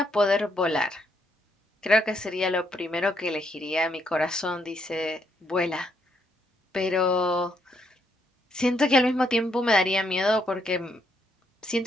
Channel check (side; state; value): both; normal; correlation 0.74